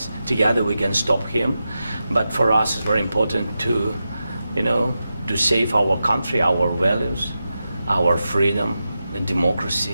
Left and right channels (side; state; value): both; inverted; correlation -0.90